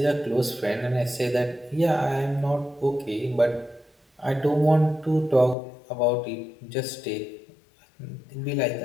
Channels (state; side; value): drops out; right; at 5.6 s